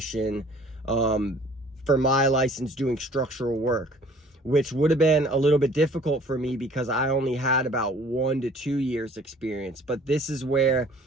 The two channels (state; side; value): normal; both; correlation 0.53